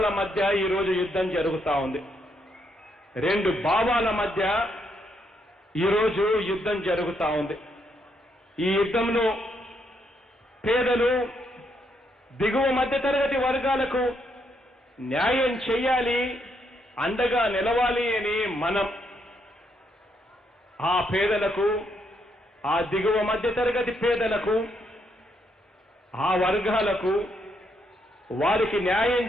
మధ్య ఈరోజు యుద్ధం జరుగుతా ఉంది. రెండు భావాల మధ్య ఈరోజు యుద్ధం జరుగుతా ఉంది. ఈ యుద్ధంలో పేదలు, దిగువ మధ్యతరగతి వర్గాలకు న్యాయం చేయాలి, అండగా నిలవాలి అని మనం ఆ పేదలకు, ఆ దిగువ మధ్యతరగతి పేదలకు, ఆ వర్గాలకు వారికి న్యాయం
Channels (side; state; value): both; normal; correlation 0.76